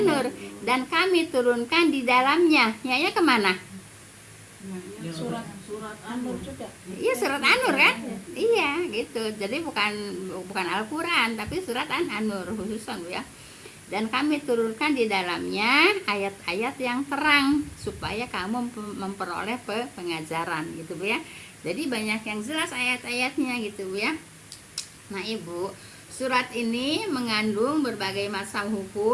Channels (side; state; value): both; identical; correlation 1.00